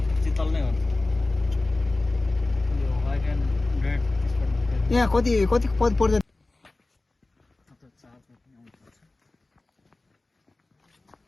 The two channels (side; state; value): right; quieter; 3.1 dB